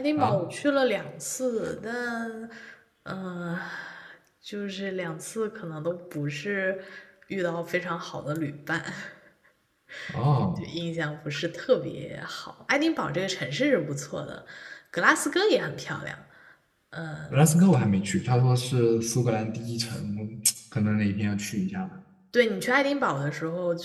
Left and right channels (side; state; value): both; identical; correlation 1.00